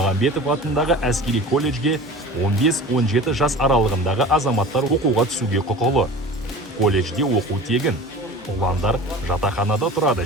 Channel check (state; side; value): normal; both; correlation 0.38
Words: атындағы әскери колледжге 15-17 жас аралығындағы азаматтар оқуға түсуге құқылы. Колледжде оқу тегін. Ұландар жатақханада тұрады